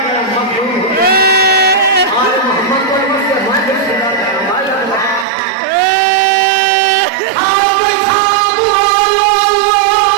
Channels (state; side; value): drops out; left; at 5.2 s